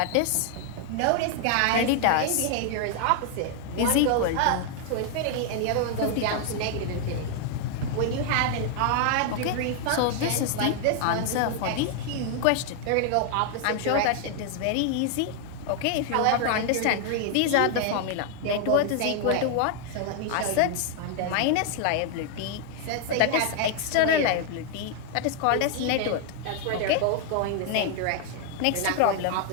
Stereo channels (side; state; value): both; different; correlation 0.00